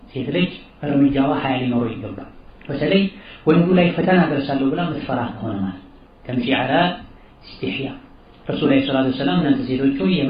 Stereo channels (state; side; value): identical; both; correlation 1.00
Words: ሴት ልጅ እርምጃዋ ሐያ ሊኖረው ይገባል። በተለይ ወንዱ ላይ ፈተና ደርሳለሁ ብላ ምትፈራ ከሆነ ማለት ተምሺ ዐላ ኢስቲህያ ረሱል ሰለላሁ ዐለይሂ ወሰለም እናንተ ሴቶች ሆይ